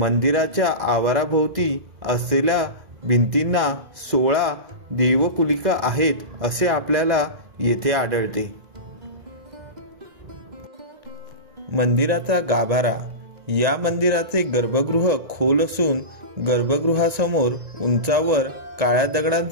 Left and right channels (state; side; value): late; left; 1.8 ms